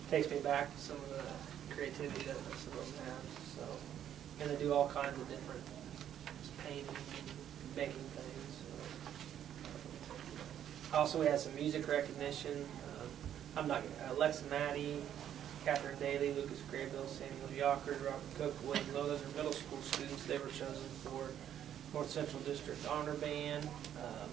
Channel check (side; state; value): left; quieter; 10.2 dB